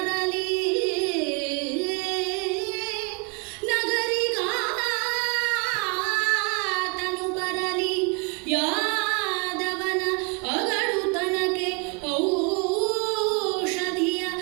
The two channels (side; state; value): left; quieter; 32.9 dB